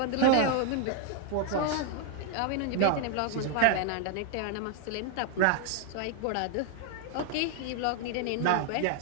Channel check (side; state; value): both; different; correlation 0.01